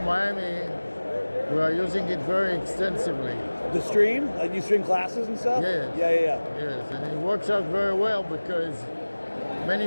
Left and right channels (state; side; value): inverted; both; correlation -1.00